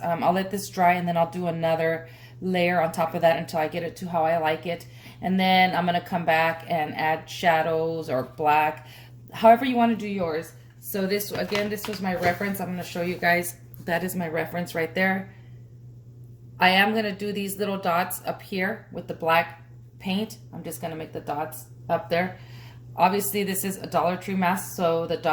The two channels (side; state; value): both; identical; correlation 1.00